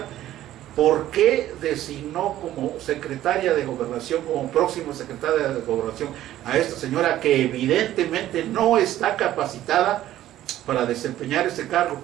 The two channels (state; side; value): quieter; left; 13.4 dB